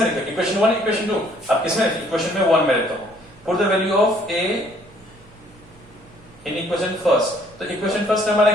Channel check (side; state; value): right; noise; hum, 26 dB below the sound